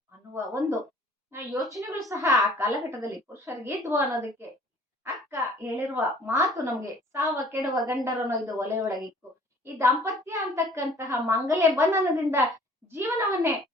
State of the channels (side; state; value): both; normal; correlation 0.53